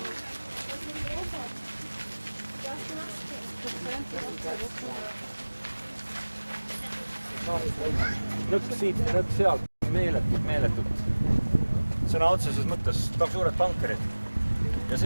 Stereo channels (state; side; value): inverted; both; correlation -1.00